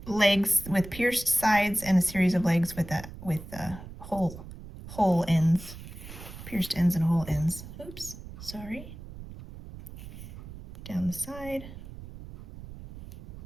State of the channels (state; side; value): noise; right; rumble, 14 dB below the sound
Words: legs with pierced sides and a series of legs with hole ends, pierced ends and hole ends. Oops, sorry. Down the side,